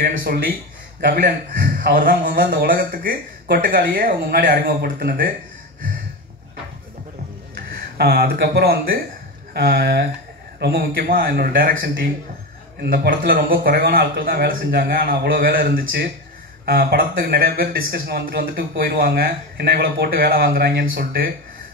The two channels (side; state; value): both; normal; correlation 0.20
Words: சொல்லி கபிலன் அவர் தான் முதல்ல இந்த உலகத்துக்கு கொட்டுக்காளியே அவங்க முன்னாடி அறிமுகப்படுத்தினது. அதுக்கப்புறம் வந்து ரொம்ப முக்கியமாக என்னோட டைரக்ஷன் டீம். இந்த படத்தில் ரொம்ப குறைவான ஆட்கள் தான் வேலை செஞ்சாங்க. ஆனால் அவ்வளோ வேலை இருந்துச்சு. படத்துக்கு நிறைய பேர் டிஸ்கஷன் வந்துட்டு போயிடுவாங்க, என்ன இவ்வளோ போட்டு வேலை வாங்குறாங்கன்னு சொல்லிட்டு.